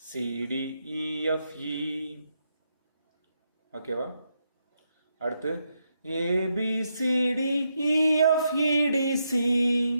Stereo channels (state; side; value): inverted; both; correlation -0.81